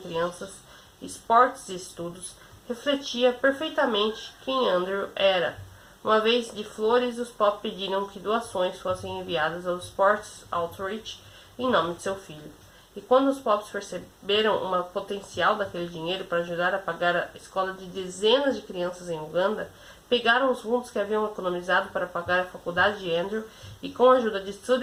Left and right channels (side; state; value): both; identical; correlation 1.00